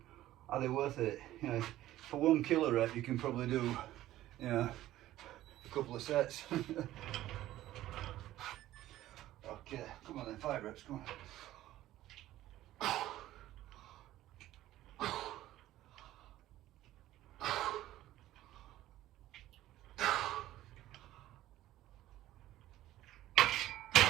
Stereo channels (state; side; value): quieter; left; 14.6 dB